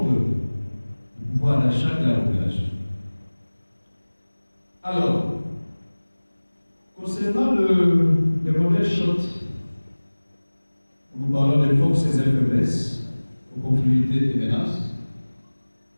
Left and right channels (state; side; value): inverted; both; correlation -1.00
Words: du pouvoir d'achat de la population. Alors, concernant le modèle SHOT, nous parlons des forces et des faiblesses, opportunités et menaces.